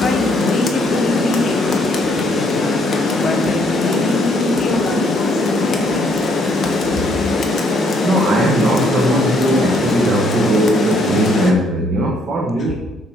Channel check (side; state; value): both; normal; correlation 0.68